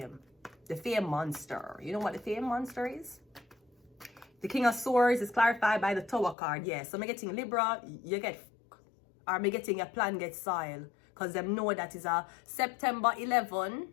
The fame monster. You know what the fame monster is? The King of Swords is clarified by the Tower card. Yeah, so I'm getting Libra, you get, or I'm getting your plan get soil. Because them know that is a September 11,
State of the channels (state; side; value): drops out; right; at 6.4 s